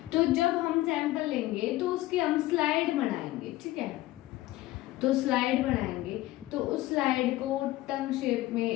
तो जब हम सैंपल लेंगे तो उसकी हम स्लाइड बनाएंगे। ठीक है, तो स्लाइड बनाएंगे तो उस स्लाइड को टंग शेप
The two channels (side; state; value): right; quieter; 17.0 dB